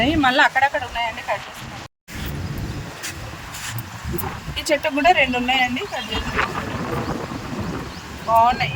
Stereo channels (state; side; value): identical; both; correlation 1.00